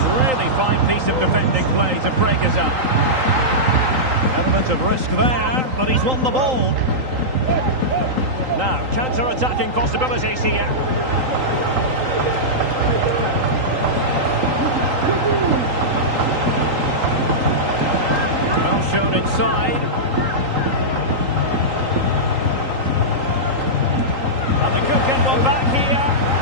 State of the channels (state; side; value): late; left; 3.8 ms